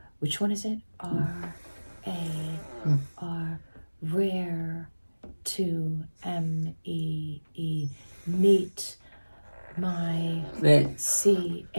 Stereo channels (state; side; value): inverted; both; correlation -1.00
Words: Which one is it? R-A-R. Rare. To M-E-E. Neat. My